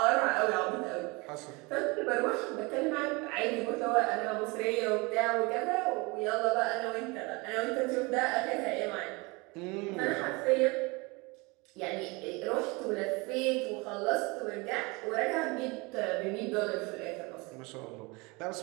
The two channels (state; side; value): quieter; left; 26.3 dB